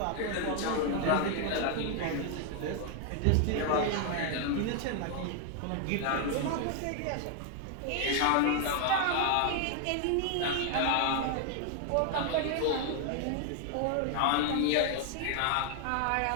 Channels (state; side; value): different; both; correlation 0.00